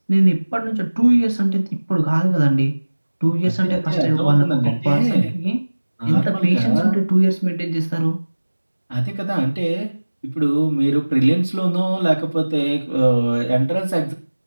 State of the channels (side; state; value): both; inverted; correlation -1.00